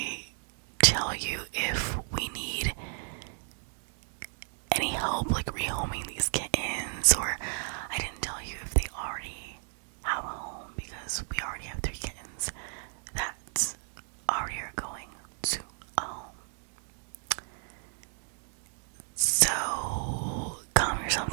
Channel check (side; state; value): left; silent; 56 dB below the other